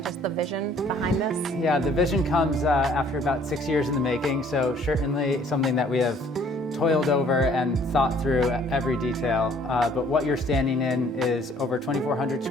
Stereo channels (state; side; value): normal; both; correlation 0.58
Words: just the vision behind this? Yeah, the vision comes after about 6 years in the making, so certainly something that we have toiled over and thought through every detail. But what you're standing in is over 2,400